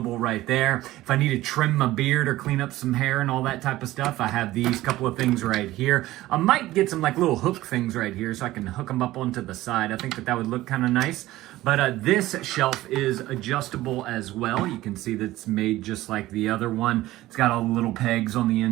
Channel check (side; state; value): left; quieter; 16.5 dB